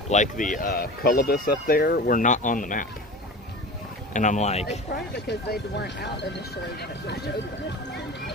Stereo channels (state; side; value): normal; both; correlation 0.34